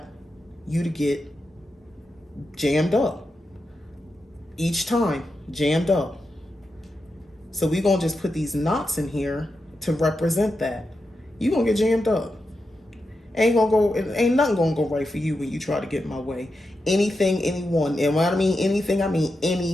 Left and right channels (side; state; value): both; normal; correlation 0.88